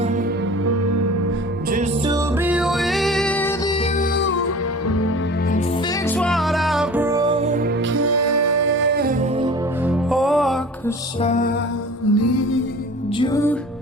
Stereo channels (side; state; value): both; normal; correlation 0.41